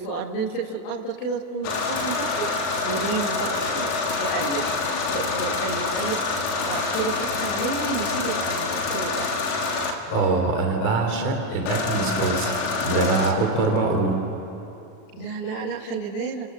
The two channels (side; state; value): right; late; 38 ms